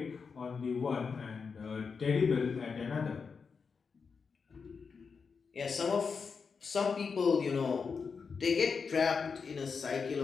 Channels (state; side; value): quieter; right; 5.4 dB